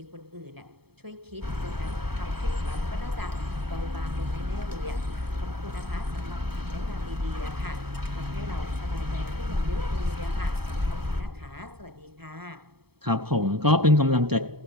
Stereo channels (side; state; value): left; late; 0.97 ms